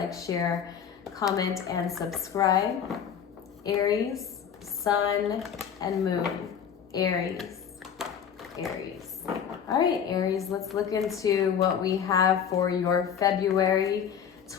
share, comment, and subscribe. Aries, Sun, and Moon. Aries. All right, Aries, let's look into what we have for your February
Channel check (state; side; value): quieter; right; 8.0 dB